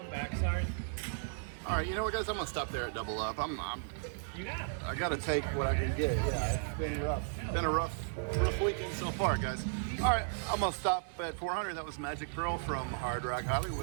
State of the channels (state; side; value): silent; left; 54 dB below the other